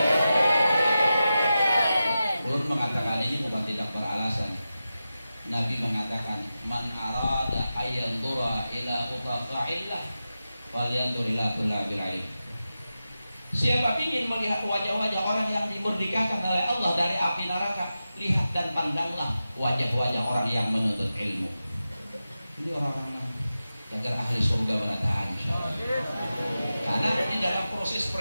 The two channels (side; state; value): both; inverted; correlation -0.92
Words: Ulun mengatakan ini bukan tidak beralasan. Nabi mengatakan man arada ayyandura ila utaqa'illah falyandur ila kullabil ilm. Siapa ingin melihat wajah-wajah orang yang dimerdekakan oleh Allah dari api neraka, lihat dan pandanglah wajah-wajah orang yang menuntut ilmu. Ini orang-orang agar ahli surga berataan insyaallah. Karena di dalam proses